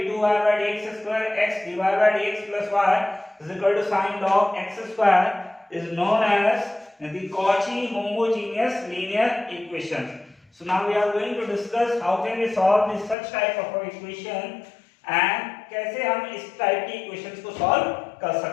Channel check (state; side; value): drops out; right; at 13.2 s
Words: by dx square x dy by dx plus y is equal to sin log x square is known as the Cauchy homogeneous linear equation. So now we are going to discuss how can we solve this such type of equation and कैसे हम इस टाइप की इक्वेशंस को सॉल्व कर